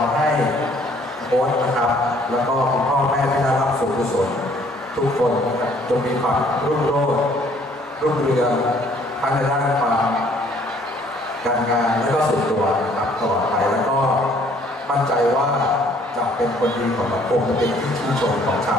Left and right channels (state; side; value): normal; both; correlation 0.60